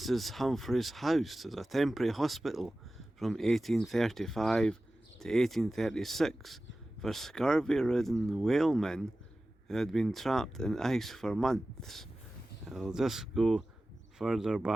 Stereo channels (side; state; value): both; normal; correlation 0.96